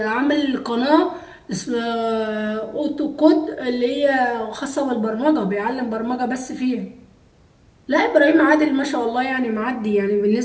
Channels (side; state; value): both; identical; correlation 1.00